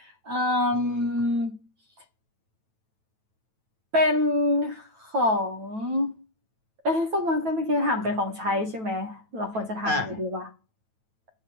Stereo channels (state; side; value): late; left; 9.1 ms